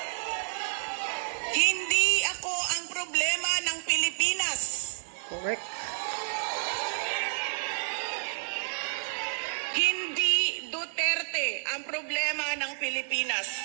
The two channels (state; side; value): silent; left; 56 dB below the other